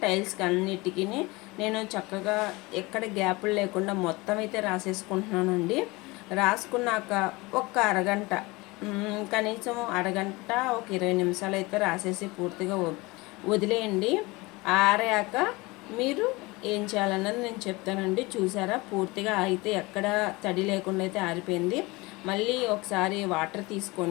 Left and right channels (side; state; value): right; quieter; 23.3 dB